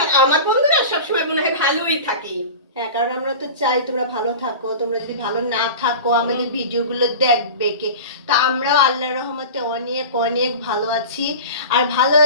আমার বন্ধুরা সবসময় মনে হয় ভালোই থাকি। হ্যাঁ, কারণ আমরা তো চাই তোমরা ভালো থাকো। তোমরা যদি ভালো না থাকো আমাদের ভিডিওগুলো দেখবে কে? তো আমরাও আল্লাহর রহমতে অনেক অনেক ভালো আছি। আর ভালো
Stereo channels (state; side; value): inverted; both; correlation -0.33